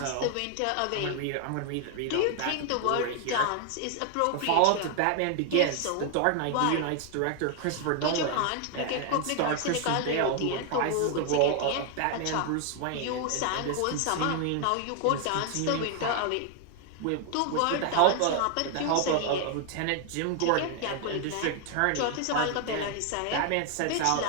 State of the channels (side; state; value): both; different; correlation 0.00